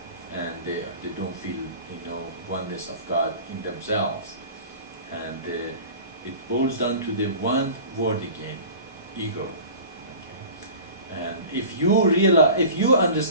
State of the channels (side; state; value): both; inverted; correlation -0.40